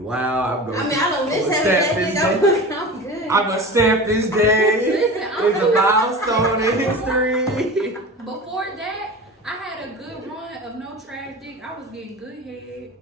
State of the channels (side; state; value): both; normal; correlation 0.33